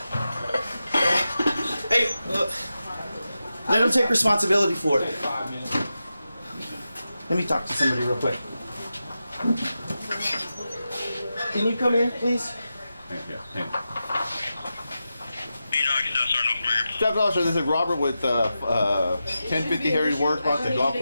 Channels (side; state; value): both; inverted; correlation -0.91